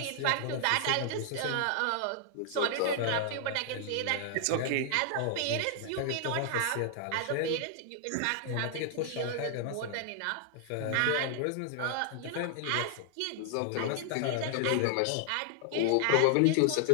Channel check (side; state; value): both; different; correlation 0.00